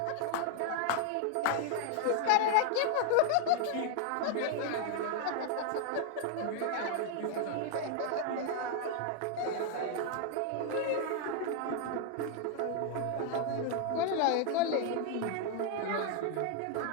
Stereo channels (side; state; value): both; different; correlation 0.00